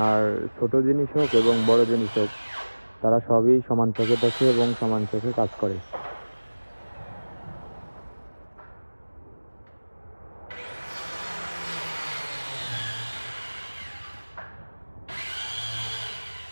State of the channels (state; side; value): inverted; both; correlation -1.00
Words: ছোট জিনিস হোক এবং বড় জিনিস হোক, তারা সবই সমান চোখে দেখে এবং সমান চোখে কাজ করে।